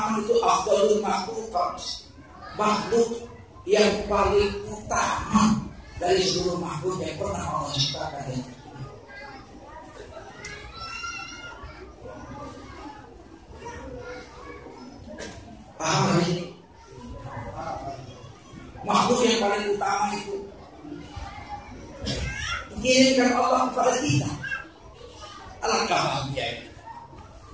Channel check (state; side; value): identical; both; correlation 1.00